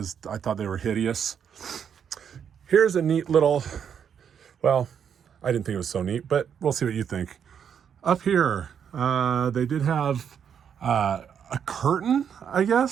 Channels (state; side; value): quieter; left; 7.9 dB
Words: I thought they were hideous. Here's a neat little, well, I didn't think it was so neat, but we'll see what you think. Up here, they did have a curtain, I